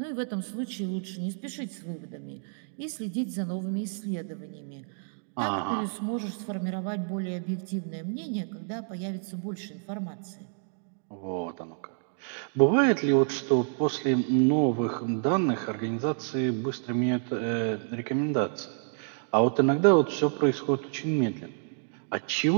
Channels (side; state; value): left; silent; 59 dB below the other